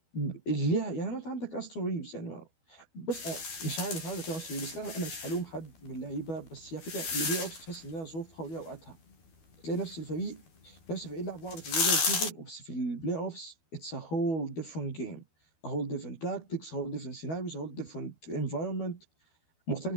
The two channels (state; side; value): late; right; 12 ms